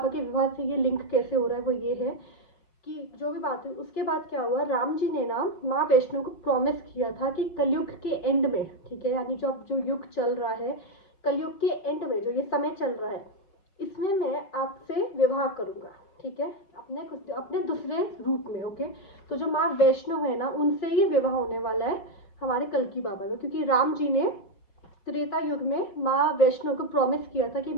के विवाह से ये लिंक कैसे हो रहा है, वो ये है कि जो भी बात हुई उसके बाद क्या हुआ, राम जी ने ना माँ वैष्णो को प्रॉमिस किया था कि कलयुग के एंड में, ठीक है, यानी जो अब जो युग चल रहा है, कलयुग के एंड में जो ये समय चल रहा है, इसमें मैं आपसे विवाह करूंगा, ठीक है, अपने दूसरे रूप में, ओके। तो जो माँ वैष्णो है ना, उनसे ही विवाह होने वाला है हमारे कल्की बाबा का, क्योंकि राम जी ने त्रेता युग में माँ वैष्णो को प्रॉमिस किया था कि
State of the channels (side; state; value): right; late; 5.2 ms